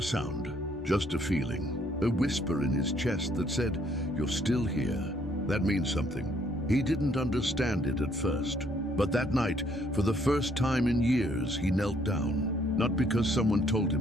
sound, just a feeling. A whisper in his chest that said, "You're still here." That means something. He didn't understand it at first. But that night, for the first time in years, he knelt down. Not because someone told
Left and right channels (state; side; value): normal; both; correlation 0.66